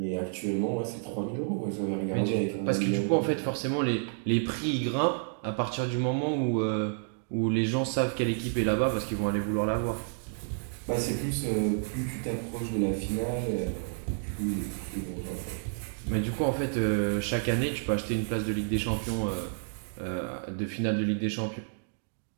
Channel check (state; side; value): silent; left; digital silence